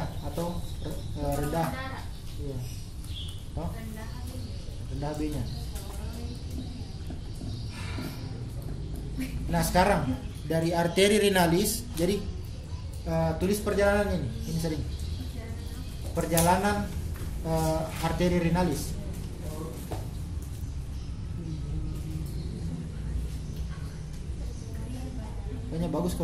atau rendah. darah. Iya. Toh? Rendah HB. Rendah HB-nya. Nah sekarang dari arteri renalis, jadi tulis perjalanan ini sering. Perjalanan arteri renalis. Kayaknya bagus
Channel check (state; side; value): identical; both; correlation 1.00